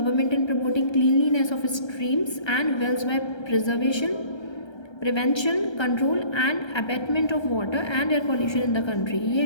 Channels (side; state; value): right; late; 1.3 ms